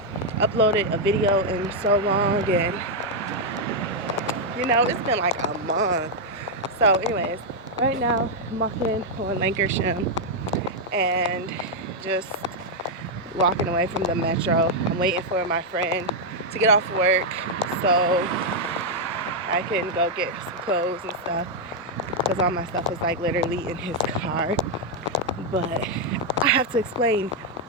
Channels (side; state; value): both; normal; correlation -0.01